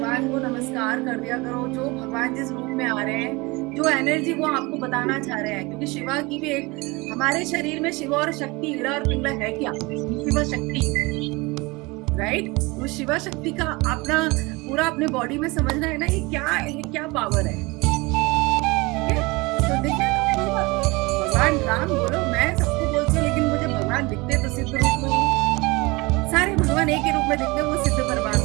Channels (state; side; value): quieter; left; 24.5 dB